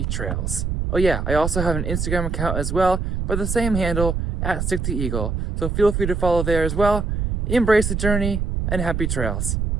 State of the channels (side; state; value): right; noise; rumble, 1 dB below the sound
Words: trails. Oh yeah, I also have an Instagram account as well by the same handle, @StickTheEagle. So feel free to follow there as well. Embrace the journey and happy trails.